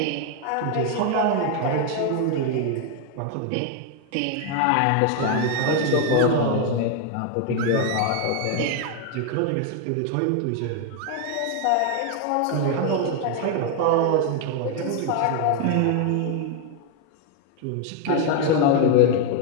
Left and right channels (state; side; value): different; both; correlation 0.01